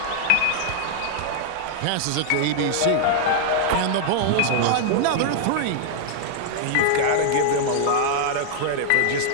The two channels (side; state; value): both; different; correlation -0.01